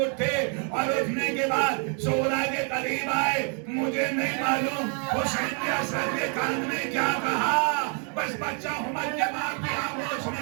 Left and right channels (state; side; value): quieter; left; 39.9 dB